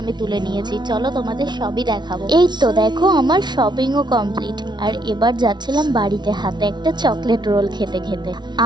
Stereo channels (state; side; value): late; left; 0.21 ms